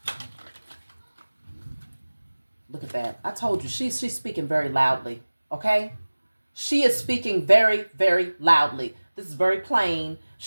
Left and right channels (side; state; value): both; inverted; correlation -1.00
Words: Look at that. I told you, she's speaking very loudly, okay? She is speaking very, very loudly. This is very plain.